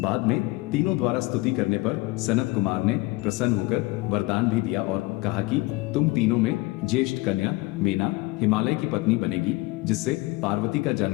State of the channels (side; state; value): right; quieter; 21.8 dB